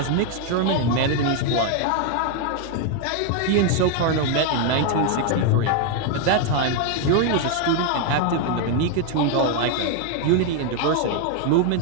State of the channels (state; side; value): different; both; correlation 0.01